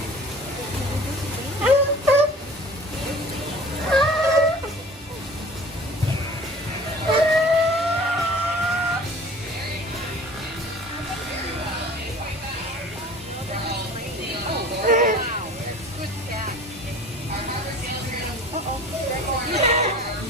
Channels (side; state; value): both; normal; correlation 0.44